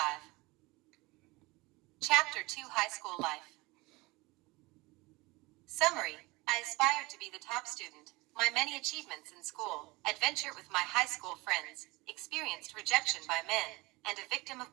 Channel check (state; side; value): quieter; left; 23.1 dB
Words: Chapter 2, High School Life. Summary. I aspired to be the top student. My many achievements in school, adventure with my high school friends, experienced rejection by men, and a victim of